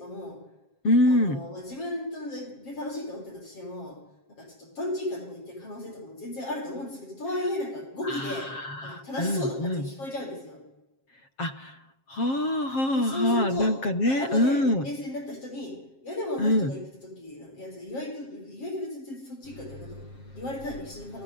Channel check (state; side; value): late; right; 7.5 ms